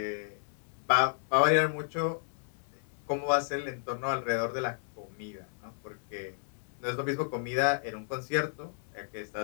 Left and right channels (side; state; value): right; silent; 56 dB below the other